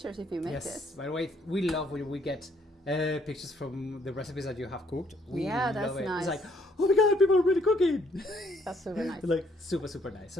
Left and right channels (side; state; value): both; normal; correlation 0.67